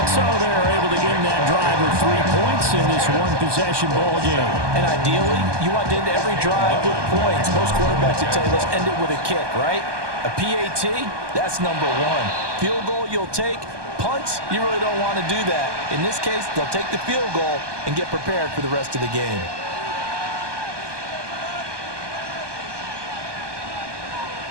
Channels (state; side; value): late; left; 1.2 ms